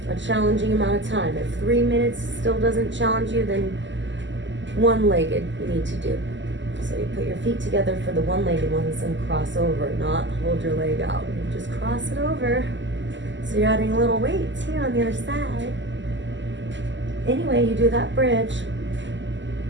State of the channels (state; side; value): late; left; 0.54 ms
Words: a challenging amount of time. If 3 minutes still doesn't challenge you, then one-legged you need to do. So you put your feet together for the one-legged ones and cross over, not hold your leg out. You just cross it over. So you're adding a little weight too on the other side. Anyway, you do that bridge